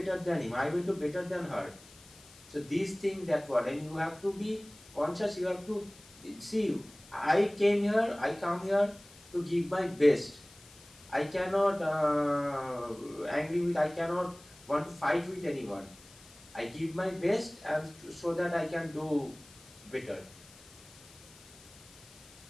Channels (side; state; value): left; noise; hiss, 22 dB below the sound